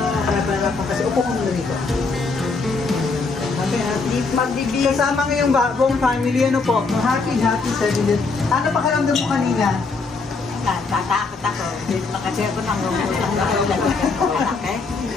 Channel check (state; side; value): quieter; right; 4.1 dB